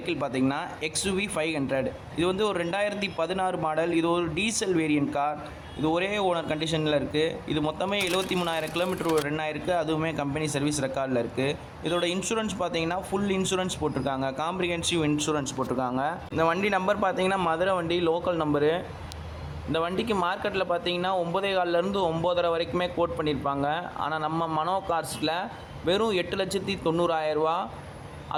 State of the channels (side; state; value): both; identical; correlation 1.00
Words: பார்த்திங்கன்னா XUV 500. இது வந்து ஒரு 2016 மாடல். இது ஒரு டீசல் வேரியன்ட் கார். இது ஒரே ஓனர் கண்டிஷனில் இருக்குது. இது மொத்தமே 73,000 கிலோமீட்டர் ரன் ஆயிருக்கு. அதுவுமே கம்பெனி சர்வீஸ் ரெக்கார்டில் இருக்குது. இதோட இன்சூரன்ஸ் பார்த்திங்கன்னா ஃபுல் இன்சூரன்ஸ் போட்டிருக்காங்க. காம்ப்ரிஹென்சிவ் இன்சூரன்ஸ் போட்டிருக்காங்க. இந்த வண்டி நம்பர் பார்த்திங்கன்னா மதுரை வண்டி லோக்கல் நம்பரு. இந்த வண்டிக்கு மார்க்கெட்டில் பார்த்தீங்கன்னா 9,400 9,500 வரைக்குமே கோட் பண்ணியிருப்பாங்க. ஆனால் நம்ம மனோ கார்ஸில் வெறும் 8,90,000